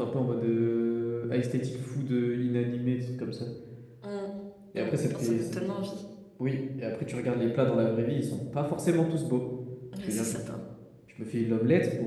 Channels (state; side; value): identical; both; correlation 1.00